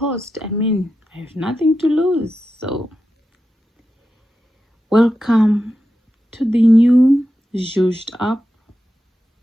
I mean, I have nothing to lose. So welcome to the new zhuzhed up.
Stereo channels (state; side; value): normal; both; correlation 0.90